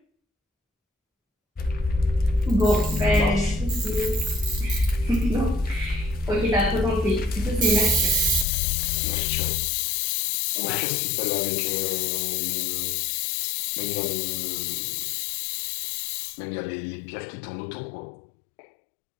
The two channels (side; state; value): right; drops out; at 8.5 s